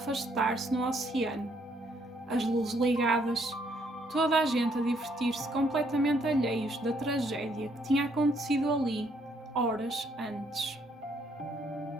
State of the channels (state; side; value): normal; both; correlation 0.69